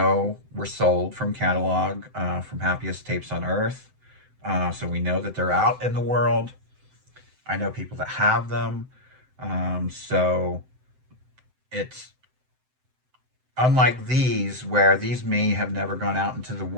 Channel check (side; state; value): left; late; 7.8 ms